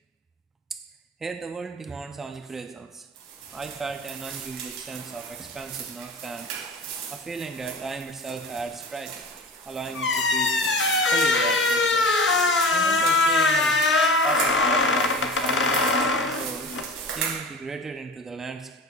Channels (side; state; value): both; normal; correlation 0.34